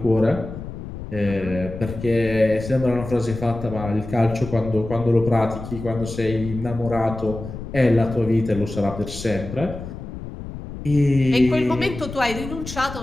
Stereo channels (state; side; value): noise; left; rumble, 10 dB below the sound